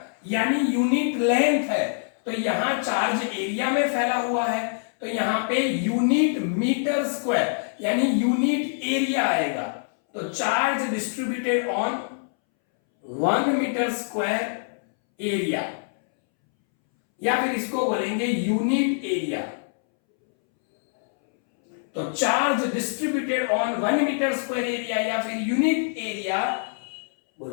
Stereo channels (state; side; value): silent; right; 62 dB below the other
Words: यानी यूनिट लेंथ है, तो यहां चार्ज एरिया में फैला हुआ है, तो यहां पे यूनिट मीटर स्क्वायर यानी यूनिट एरिया आएगा। तो charge distributed on 1 metre square area, या फिर इसको बोलेंगे यूनिट एरिया। तो charge distributed on 1 metre square area या फिर unit area